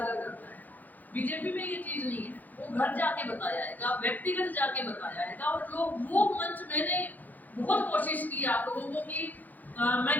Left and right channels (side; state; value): right; late; 0.083 ms